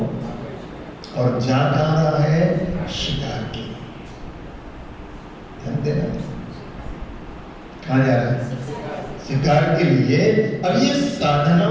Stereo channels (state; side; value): identical; both; correlation 1.00